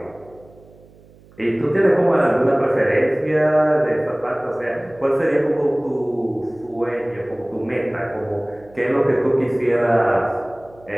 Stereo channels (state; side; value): noise; right; hum, 26 dB below the sound